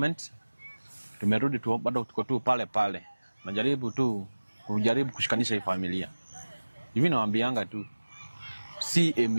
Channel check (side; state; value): both; inverted; correlation -1.00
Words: tumerudi tu, bado tuko tu pale pale. Najaribu tu kushikanisha hii familia. Hivi nawaambianga tu